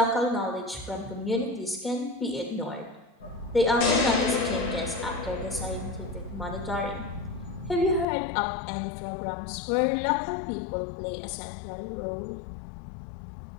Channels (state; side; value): drops out; right; at 8.1 s